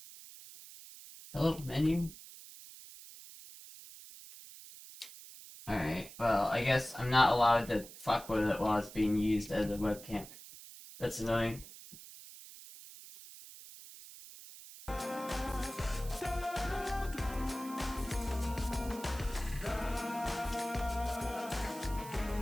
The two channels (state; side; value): noise; right; hiss, 16 dB below the sound